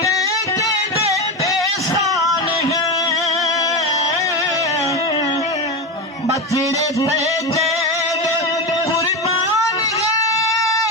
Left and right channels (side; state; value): both; normal; correlation 0.17